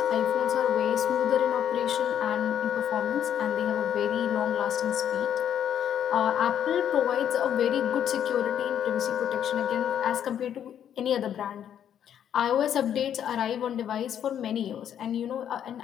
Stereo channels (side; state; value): right; quieter; 9.6 dB